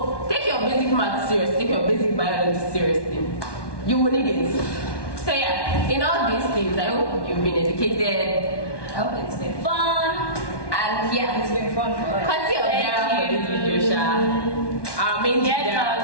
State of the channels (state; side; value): late; right; 1.1 ms